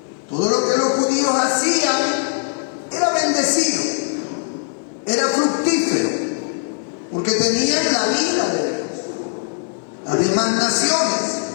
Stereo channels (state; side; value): silent; right; digital silence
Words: Todo lo que los judíos hacían era bendecido, era fructífero, porque tenían la vida de Dios. Las demás naciones